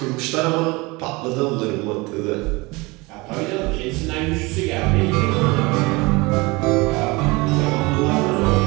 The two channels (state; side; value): quieter; left; 24.4 dB